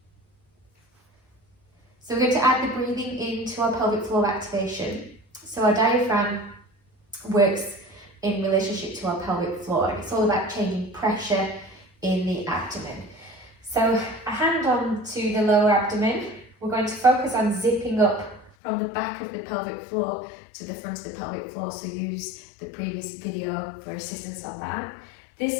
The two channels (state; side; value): drops out; right; at 18.5 s